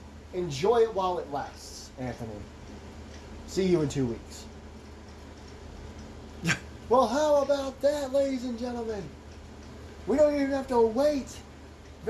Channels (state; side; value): identical; both; correlation 1.00